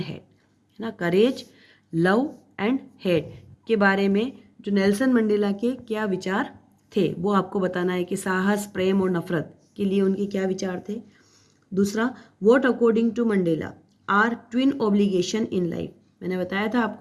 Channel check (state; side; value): identical; both; correlation 1.00